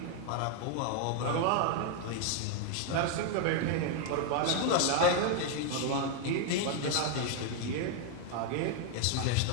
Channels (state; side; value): different; both; correlation 0.01